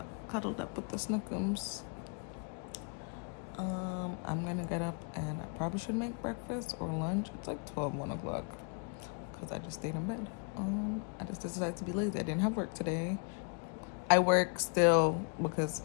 with the Snookums. I'm gonna get up and I probably should make breakfast or lunch. It's like 1 o'clock because I just stayed in bed. I just decided to be lazy. I didn't have work today. I work still because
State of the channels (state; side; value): quieter; right; 39.5 dB